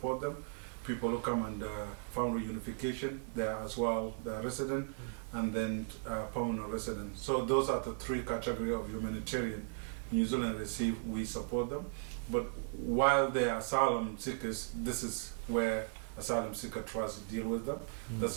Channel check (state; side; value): silent; left; 53 dB below the other